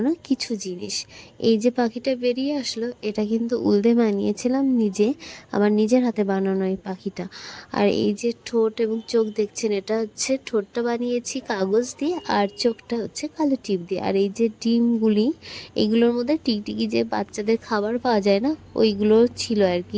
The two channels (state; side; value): identical; both; correlation 1.00